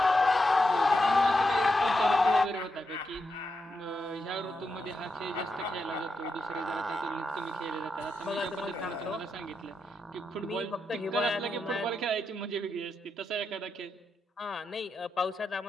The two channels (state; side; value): normal; both; correlation 0.85